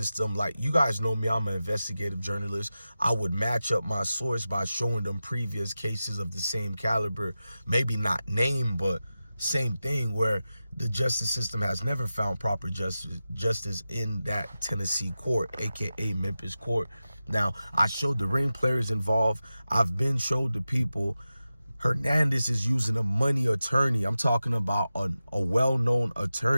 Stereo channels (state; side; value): inverted; both; correlation -0.94